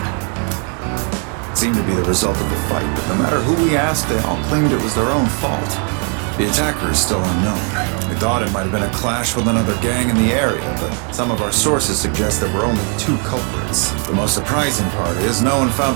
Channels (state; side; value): quieter; left; 40.0 dB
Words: It seemed to be the result of a fight, but no matter who we asked, they all claimed it was their own fault. The attacker is still unknown. We thought it might have been a clash with another gang in the area, but some of our sources suggest there were only 2 culprits. The most surprising part is no one